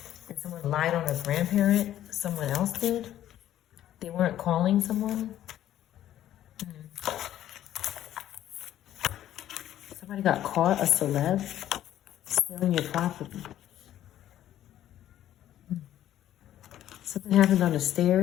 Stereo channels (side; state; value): right; quieter; 12.2 dB